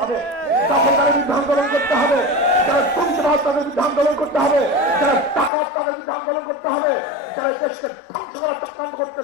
হবে, দখলদারের বিরুদ্ধে আন্দোলন করতে হবে, যারা দুর্নীতিবাজ তাদের বিরুদ্ধে আন্দোলন করতে হবে, যারা টাকা তাদের বিরুদ্ধে আন্দোলন করতে হবে, যারা দেশকে ধ্বংস করার চক্রান্ত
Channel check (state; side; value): drops out; right; at 5.5 s